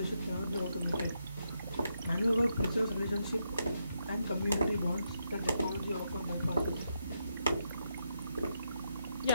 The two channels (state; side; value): inverted; both; correlation -0.82